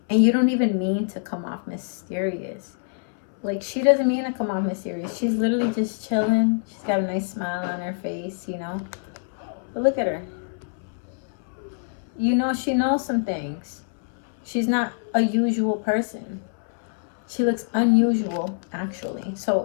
And you don't even mean to come off mysterious. Like, she doesn't mean to come off mysterious. She's literally just chilling. She's got a nice smile on her face, But look at her. She knows some things. She's not a usual person. She looks unusual, actually.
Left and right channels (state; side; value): silent; right; 62 dB below the other